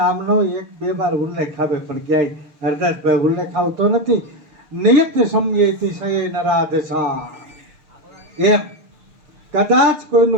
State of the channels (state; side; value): late; left; 6.6 ms